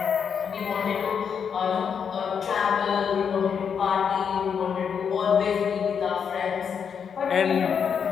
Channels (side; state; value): right; quieter; 7.1 dB